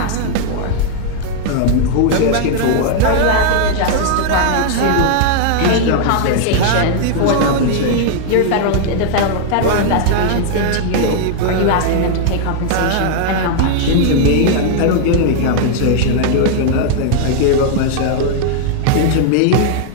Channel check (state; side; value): different; both; correlation 0.00